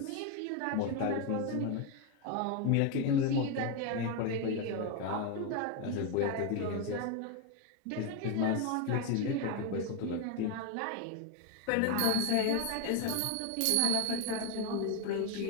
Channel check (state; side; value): different; both; correlation 0.01